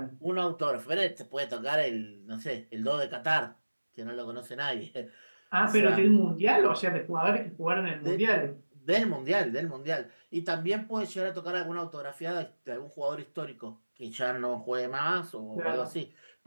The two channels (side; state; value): both; inverted; correlation -1.00